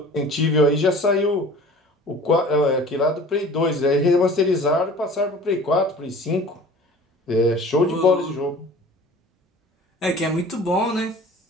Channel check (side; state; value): both; normal; correlation 0.44